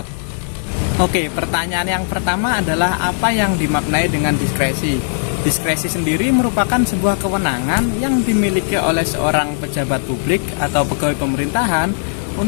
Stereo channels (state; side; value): silent; right; digital silence